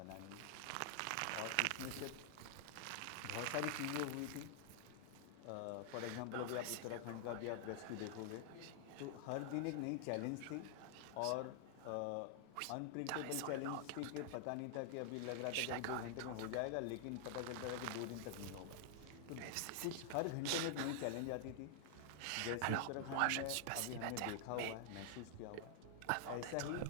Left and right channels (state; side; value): different; both; correlation -0.01